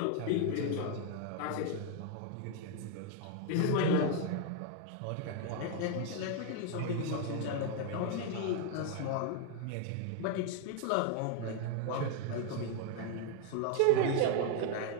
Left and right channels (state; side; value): different; both; correlation 0.00